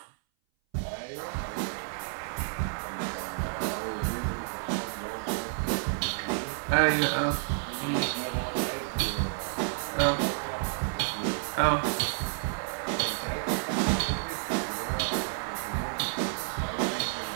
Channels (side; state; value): left; silent; 58 dB below the other